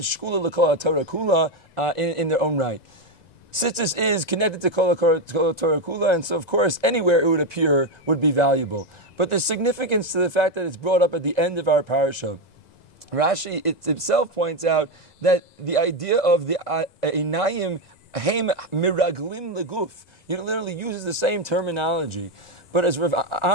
Shkula l'kol Torah Kula, in their own right. Tzitzis is connected to Kol Torah Kula, and so of course anywhere it would appear would be valuable. But there's significance to the fact that it's brought up at the end of our parasha. Rashi itself points out that the idea of the Einayim Heim miraglim leguf. He literally uses the same terminology. But as Rav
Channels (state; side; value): late; right; 1.9 ms